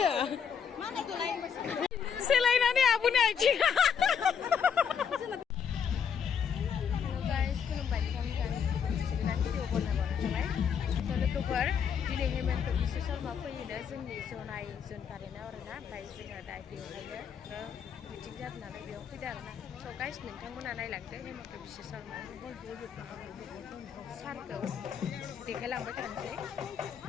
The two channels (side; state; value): right; quieter; 7.3 dB